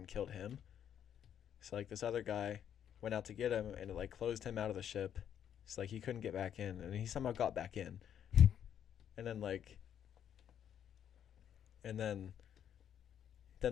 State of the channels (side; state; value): right; quieter; 9.4 dB